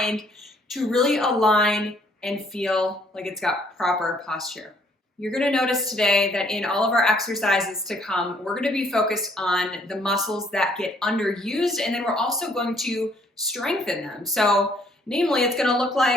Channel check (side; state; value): both; normal; correlation 0.64